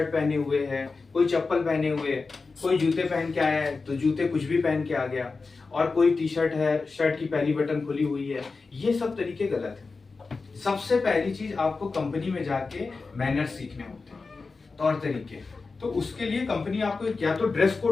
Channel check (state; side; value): quieter; right; 4.2 dB